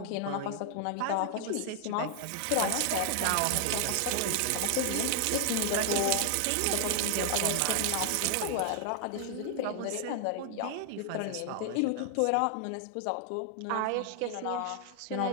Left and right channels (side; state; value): both; different; correlation 0.00